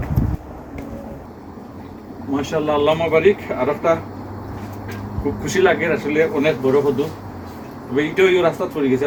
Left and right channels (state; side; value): identical; both; correlation 1.00